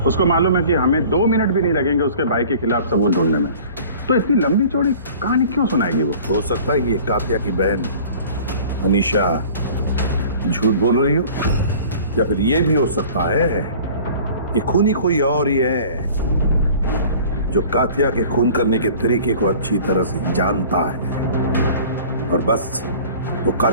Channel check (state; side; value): inverted; both; correlation -0.46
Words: उसको मालूम है कि हमें 2 मिनट भी नहीं लगेंगे उसके भाई के खिलाफ सबूत ढूंढने में, तो इतनी लंबी चौड़ी कहानी क्यों सुनाएगी वो? हो सकता है कि ये कात्या की बहन अनीशा झूठ बोल रही हो, या फिर ये भी हो सकता है कि खूनी कोई और ही है जो कात्या के खून करने के तरीके को अच्छी तरह से जानता है और बस वो